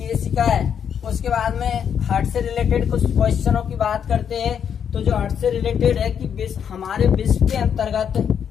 है। उसके बाद में हार्ट से रिलेटेड कुछ क्वेश्चनों की बात करते हैं। तो जो हार्ट से रिलेटेड है कि हमारे विश्व के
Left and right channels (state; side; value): quieter; right; 8.0 dB